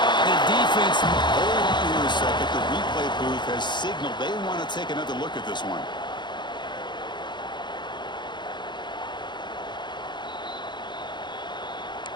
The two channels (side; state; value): right; late; 0.22 ms